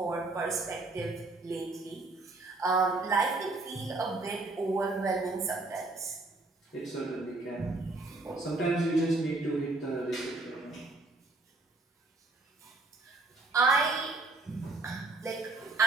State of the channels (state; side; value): quieter; left; 3.2 dB